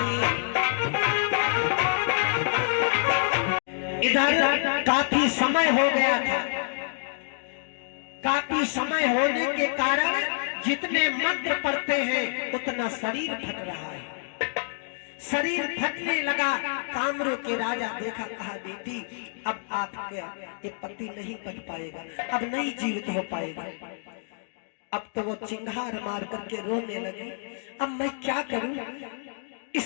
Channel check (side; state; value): right; silent; digital silence